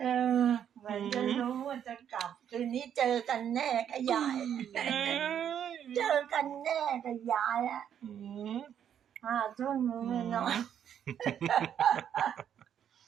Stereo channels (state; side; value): quieter; left; 9.2 dB